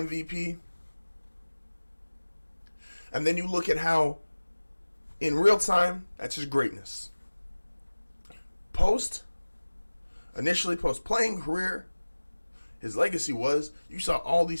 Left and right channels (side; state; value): both; inverted; correlation -1.00